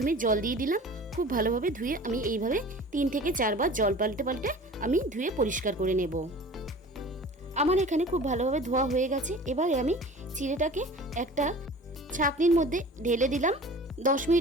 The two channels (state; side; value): normal; both; correlation 0.41